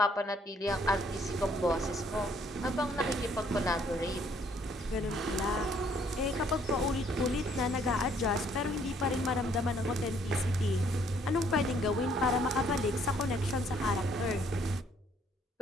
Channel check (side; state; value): both; normal; correlation 0.64